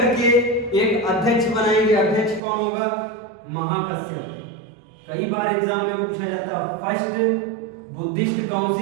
एक अध्यक्ष बनाएंगे। अध्यक्ष कौन होगा? महाकश्यप। कई बार एग्जाम में पूछा जाता, फर्स्ट बुद्धिस्ट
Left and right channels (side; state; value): left; drops out; at 2.4 s